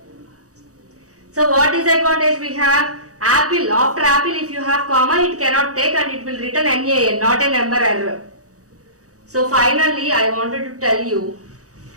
So what disadvantage we have? Apple, after apple if you have comma it cannot take and it will return NaN, not a number error. So finally I wanted to tell you,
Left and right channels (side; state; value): left; late; 0.66 ms